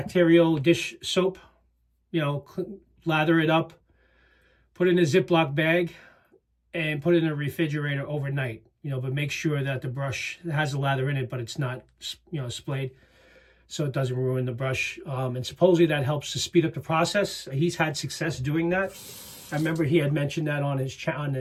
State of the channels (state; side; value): identical; both; correlation 1.00